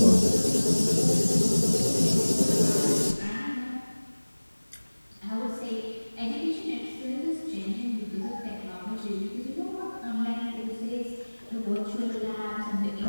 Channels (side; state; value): both; inverted; correlation -1.00